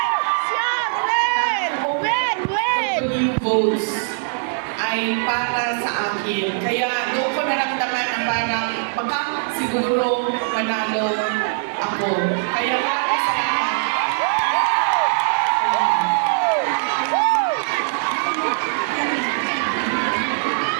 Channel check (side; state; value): left; silent; 65 dB below the other